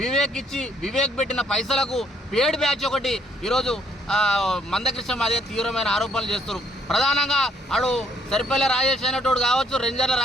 పెట్టిన పైసలకు పేడ్ బ్యాచ్ ఒకటి ఈరోజు మందకృష్ణ మాదిగర్ తీవ్రమైన ఆరోపణలు చేస్తారు. ప్రధానంగా ఆడు సరిపల్లి రాజేష్ అయినట్టు కావచ్చు, రెంజర్ల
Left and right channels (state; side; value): normal; both; correlation 0.68